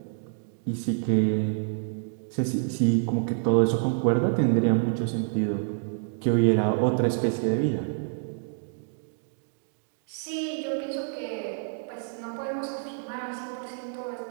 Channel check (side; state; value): left; silent; digital silence